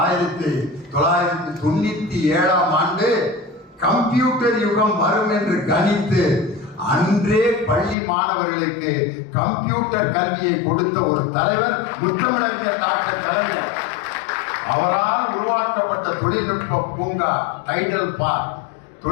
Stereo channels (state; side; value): drops out; right; at 8.0 s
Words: ஆண்டு கம்ப்யூட்டர் யுகம் வரும் என்று கணித்து அன்றே பள்ளி மாணவர்களுக்கு கம்ப்யூட்டர் கல்வியை கொடுத்த ஒரு தலைவர் முத்தமிழறிஞர் டாக்டர் கலைஞர். அவரால் உருவாக்கப்பட்ட தொழில்நுட்ப பூங்கா, டைடல் பார்க்,